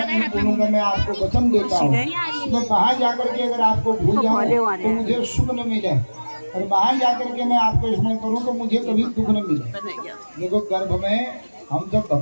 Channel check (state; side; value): inverted; both; correlation -1.00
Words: नहीं भूलूंगा, मैं आपको वचन देता हूँ, तो बाहर जाकर के अगर आपको भूल जाऊँ तो मुझे सुख न मिले, और बाहर जाकर के मैं आपको स्मरण करूँ तो मुझे कभी दुख न मिले। देखो गर्भ में हम जब